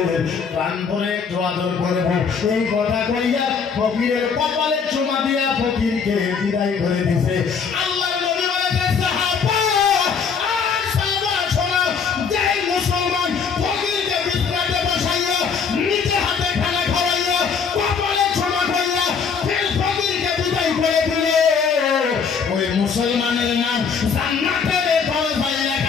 প্রাণ ভরে একটু আদর করবো। এই কথা কইয়া ফকিরের কপালে চুমা দিয়া ফকিরকে বিদায় করে দিছে। আল্লাহ নবী বলেছেন, সাহাবা আর সাহাবা শোনো, যেই মুসলমান ফকিরকে বিছানাতে বসাইয়া নিজে হাতে খানা খাওয়াইয়া কপালে চুমা কইয়া ফের ফকিরকে বিদায় করে দিলে, ওই মুসলমানের নাম জান্নাতের দরজায়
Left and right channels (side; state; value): right; quieter; 6.0 dB